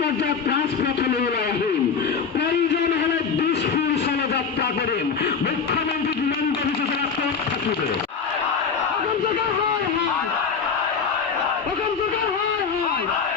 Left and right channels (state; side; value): quieter; right; 5.9 dB